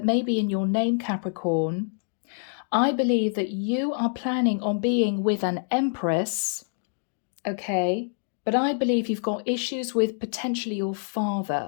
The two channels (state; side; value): silent; right; digital silence